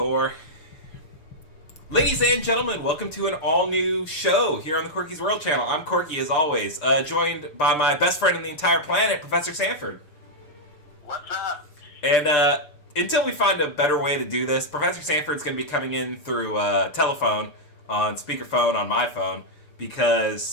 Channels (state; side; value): late; right; 6.7 ms